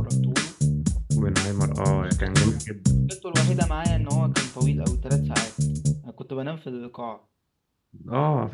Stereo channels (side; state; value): both; identical; correlation 1.00